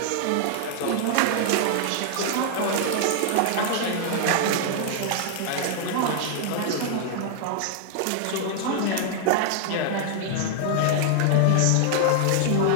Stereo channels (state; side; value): different; both; correlation 0.00